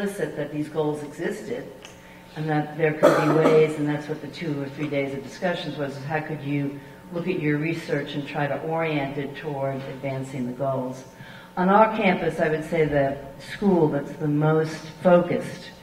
that these goals existed and that there could be ways, and that's what the 2 or 3 days of discussions was, is how could you look at your research and try to orient it toward advancing the goals. On our campus, I would say the school that's the most focused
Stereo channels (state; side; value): identical; both; correlation 1.00